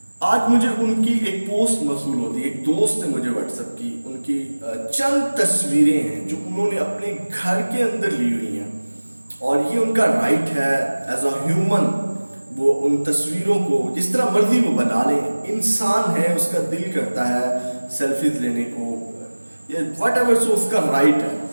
आज मुझे उनकी एक पोस्ट मौसूल होती है, एक दोस्त ने मुझे व्हाट्सएप की, उनकी चंद तस्वीरें हैं जो उन्होंने अपने घर के अंदर ली हुई हैं और ये उनका राइट है एज अ ह्यूमन। वो उन तस्वीरों को जिस तरह मर्जी वो बना लें, इंसान है, उसका दिल करता है सेल्फीज लेने को या वट एवर, सो उसका राइट है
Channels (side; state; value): both; inverted; correlation -1.00